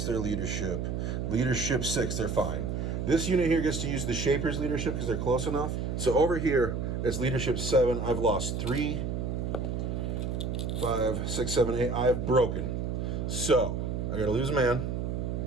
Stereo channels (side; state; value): right; noise; hum, 2 dB below the sound